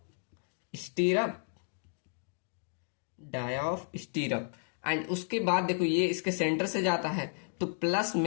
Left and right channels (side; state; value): right; silent; digital silence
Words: stirrup, dia of stirrup. And उसके बाद देखो ये इसके सेंटर से जाता है, तो प्लस